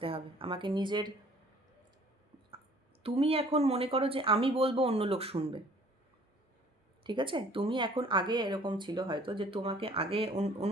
হবে, আমাকে নিজের, তুমি এখন মনে করো যে আমি বলবো অন্য লোক শুনবে, ঠিক আছে? তুমি এখন, আগে এরকম ছিল হয়তো যে তোমাকে আগে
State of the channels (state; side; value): normal; both; correlation 0.55